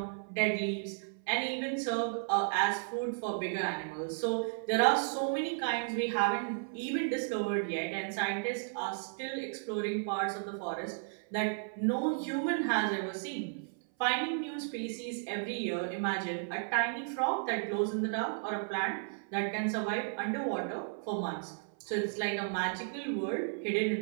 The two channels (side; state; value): left; silent; 55 dB below the other